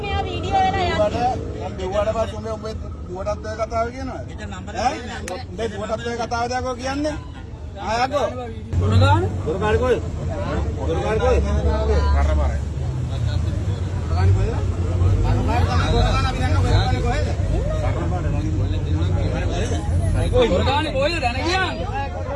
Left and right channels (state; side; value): identical; both; correlation 1.00